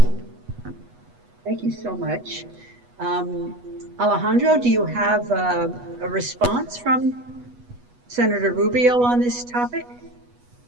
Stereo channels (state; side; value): late; left; 8.2 ms